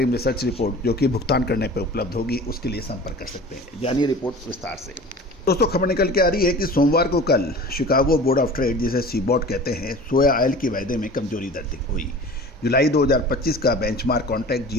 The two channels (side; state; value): both; normal; correlation 0.40